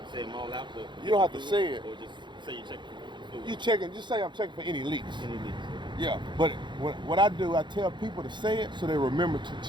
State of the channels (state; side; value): late; left; 0.22 ms